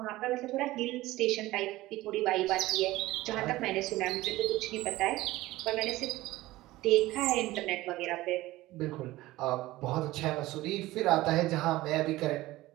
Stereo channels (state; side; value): quieter; left; 17.7 dB